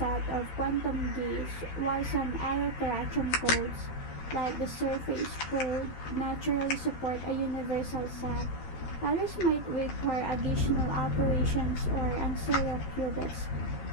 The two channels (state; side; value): late; right; 13 ms